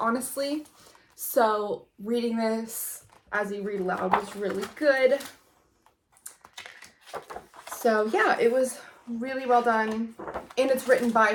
So reading this as you read aloud was really good. So yeah, it was really well done, and it's written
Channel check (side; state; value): both; identical; correlation 1.00